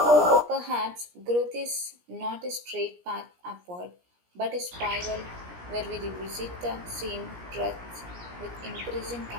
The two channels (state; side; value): late; left; 17 ms